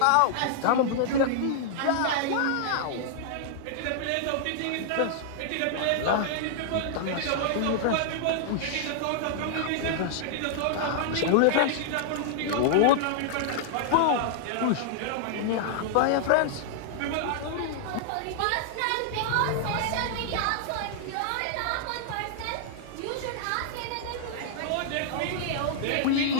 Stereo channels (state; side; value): different; both; correlation -0.01